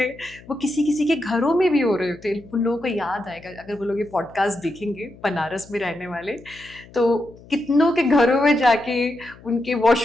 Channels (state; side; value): noise; left; hum, 22 dB below the sound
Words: वो किसी किसी के घरों में भी हो रहे होते। उन लोगों को याद आएगा अगर वो लोग ये पॉडकास्ट देखेंगे, बनारस में रहने वाले, तो कितनों के घरों में जाके उनके